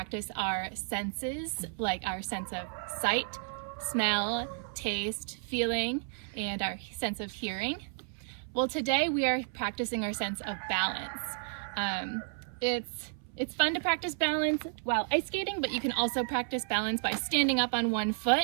our senses, like our sense of sight, smell, taste, feeling, and our sense of hearing? Well, today we are practicing our sense of balance. It's fun to practice balance while ice skating, but you can also practice balance by standing up on one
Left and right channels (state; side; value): silent; left; 56 dB below the other